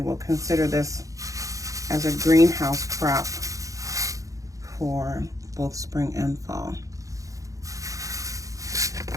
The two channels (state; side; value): late; left; 0.16 ms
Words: will consider this as a greenhouse crop for both spring and fall.